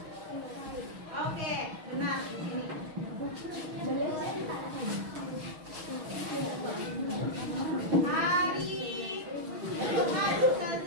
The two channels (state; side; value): late; left; 6.3 ms